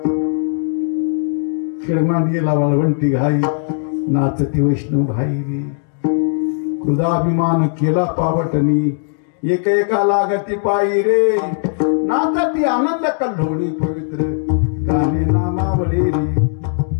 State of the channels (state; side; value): silent; right; digital silence